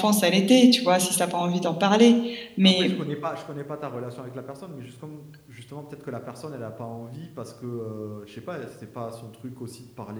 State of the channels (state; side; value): identical; both; correlation 1.00